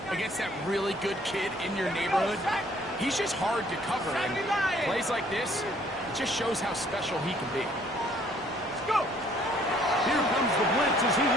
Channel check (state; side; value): normal; both; correlation 0.61